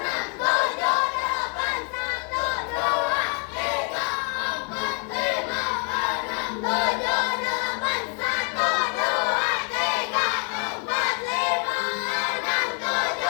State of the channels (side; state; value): right; quieter; 35.4 dB